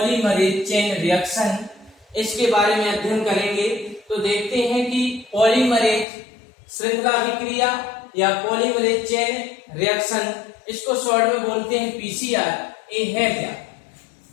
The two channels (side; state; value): right; drops out; at 6.1 s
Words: चेन रिएक्शन इसके बारे में अध्ययन करेंगे। तो देखते हैं कि पॉलीमरेज श्रृंखला अभिक्रिया या पॉलीमरेज चेन रिएक्शन, इसको शॉर्ट में बोलते हैं पीसीआर, ये है क्या।